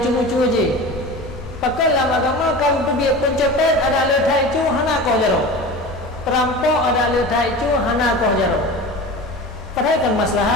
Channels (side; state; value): both; normal; correlation 0.33